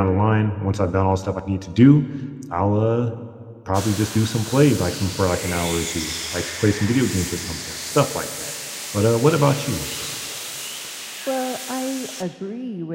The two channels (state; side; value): identical; both; correlation 1.00